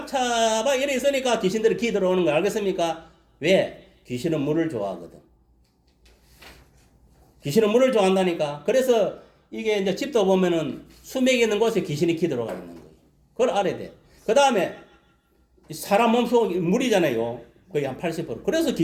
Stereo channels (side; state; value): both; identical; correlation 1.00